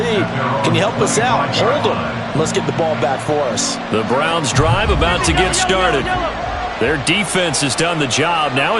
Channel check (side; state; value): both; identical; correlation 1.00